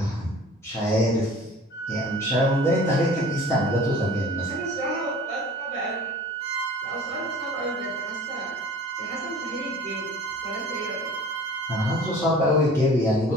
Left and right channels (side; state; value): both; normal; correlation 0.44